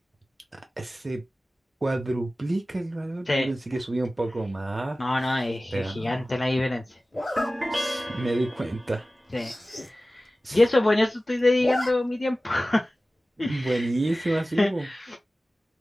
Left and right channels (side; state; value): both; normal; correlation 0.96